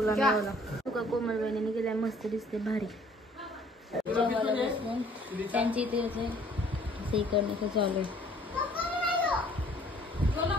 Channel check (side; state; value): both; normal; correlation 0.58